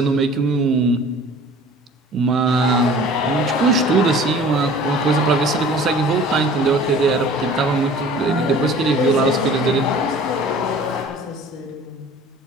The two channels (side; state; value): both; normal; correlation 0.46